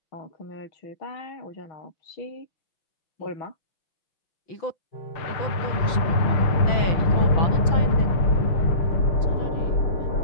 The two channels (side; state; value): right; late; 5.9 ms